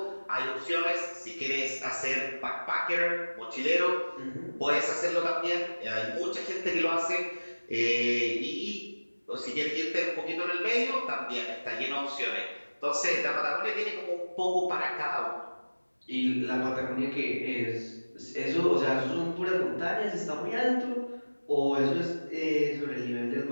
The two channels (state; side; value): inverted; both; correlation -1.00